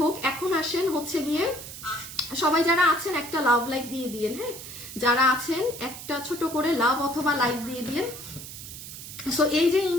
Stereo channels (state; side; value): noise; right; hiss, 12 dB below the sound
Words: এখন আসেন হচ্ছে গিয়ে সবাই যারা আছেন একটা লাভ লাইক দিয়ে দিয়েন। হ্যাঁ, যারা আছেন একটা ছোট করে লাভ অথবা লাইক দিয়ে দিয়েন। সো এই যে